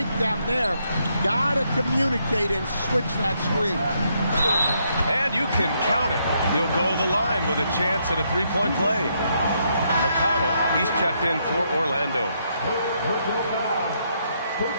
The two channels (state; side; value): inverted; both; correlation -0.75